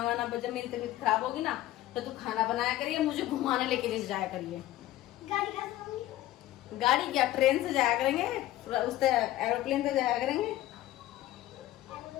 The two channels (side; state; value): right; quieter; 14.9 dB